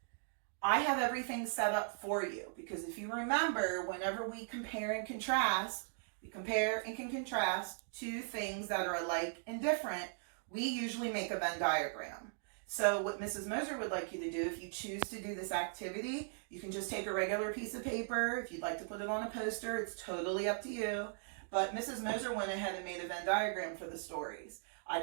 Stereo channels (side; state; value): left; silent; digital silence